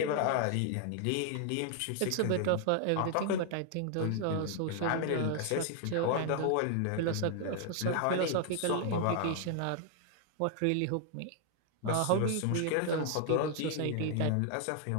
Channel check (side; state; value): both; different; correlation 0.00